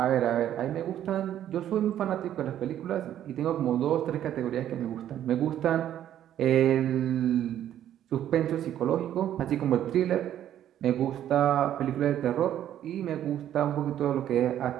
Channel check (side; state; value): left; quieter; 11.2 dB